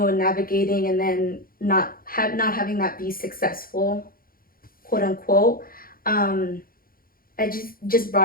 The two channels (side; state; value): right; late; 0.42 ms